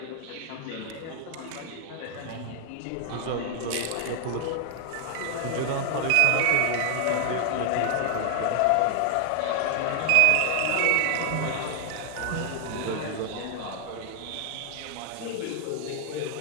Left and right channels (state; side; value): different; both; correlation 0.00